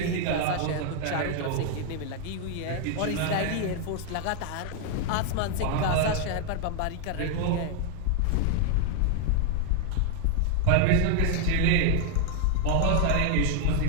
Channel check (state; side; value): different; both; correlation 0.00